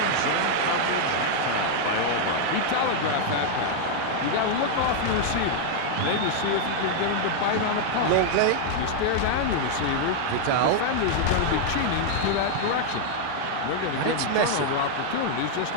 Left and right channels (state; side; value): different; both; correlation 0.00